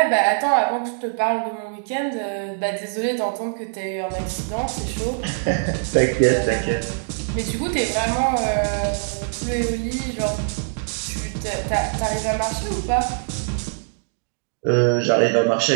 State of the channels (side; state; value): left; silent; digital silence